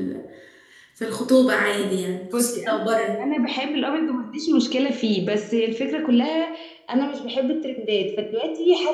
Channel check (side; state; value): both; identical; correlation 1.00